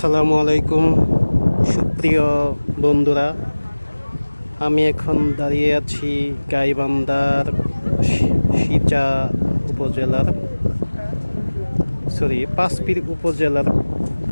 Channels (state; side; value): inverted; both; correlation -1.00